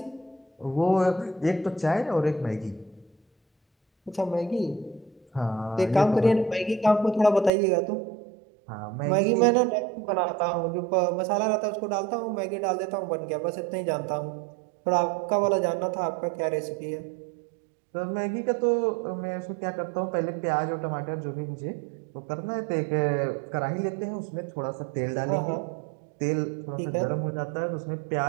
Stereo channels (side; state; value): left; drops out; at 7.5 s